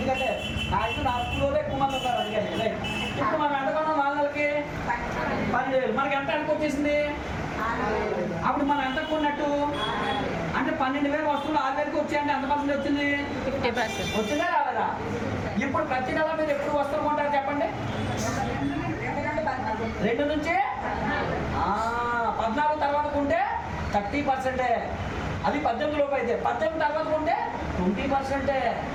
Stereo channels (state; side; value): identical; both; correlation 1.00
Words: నా స్కూల్లో ఎక్కువ మంది ఉన్నారు. అందుకని ఇప్పుడు మనం ఎంత కొన్నాం? 4 నెలలకి 12,000. మనకి ఎంత అనుకు వచ్చేసింది? అప్పుడు మనం ఎంత కొన్నట్టు? అంటే 12,000 వస్తువులు 6,000కి వచ్చాయంటే ఎంత పర్సెంట్ వచ్చింది? 50%. వచ్చిందా రాలేదా? ఇప్పుడు ప్రతి నెల మీరు ఎప్పుడు వస్తువులు కొంటారు చెప్పండి? 2 నుంచి 14 తర్వాత కొంటే 30%. అది 18 లోపు అయితే. 18 తర్వాత కొంటే 20%.